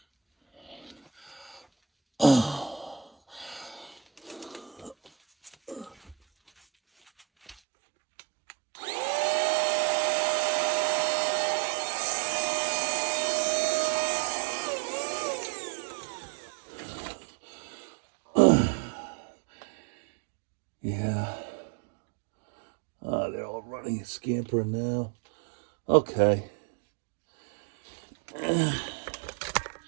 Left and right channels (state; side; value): drops out; left; at 7.6 s